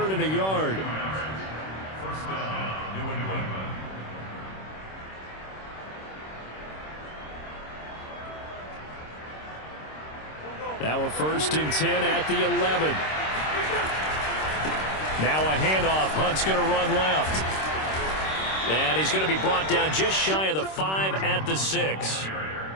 and a yard. 1st down, New England. Now a 1st and 10 at the 11. Now a handoff. Hunt's going to run left. And he's going to be brought down just shy of the 5 at the 6.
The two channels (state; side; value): late; right; 26 ms